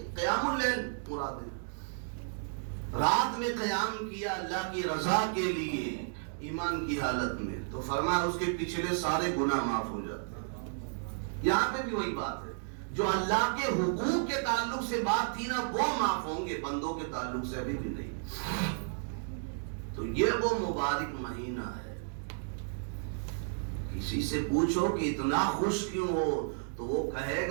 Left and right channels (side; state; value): left; silent; digital silence